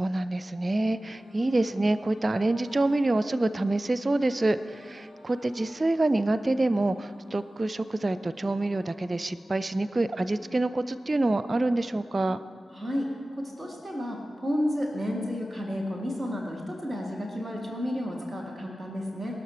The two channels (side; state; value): both; normal; correlation 0.97